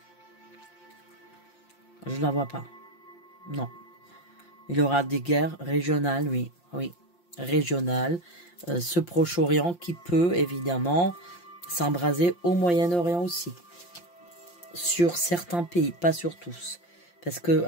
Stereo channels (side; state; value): right; late; 5.7 ms